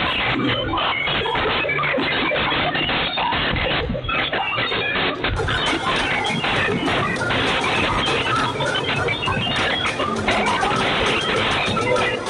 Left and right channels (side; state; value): both; identical; correlation 1.00